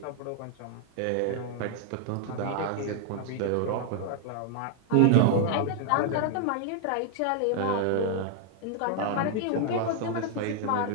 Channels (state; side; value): different; both; correlation 0.00